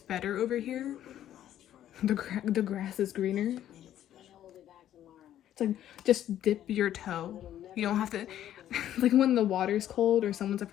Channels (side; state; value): right; quieter; 11.6 dB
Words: better over here. The grass is greener. It's like just dip your toe. You don't have to like when the water's cold or someone's